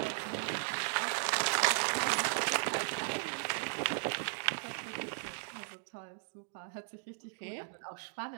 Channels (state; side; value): silent; left; digital silence